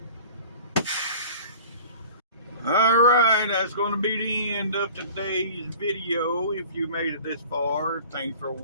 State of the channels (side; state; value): both; inverted; correlation -0.44